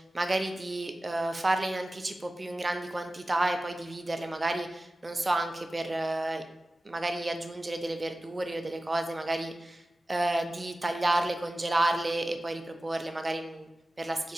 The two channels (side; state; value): both; normal; correlation 0.95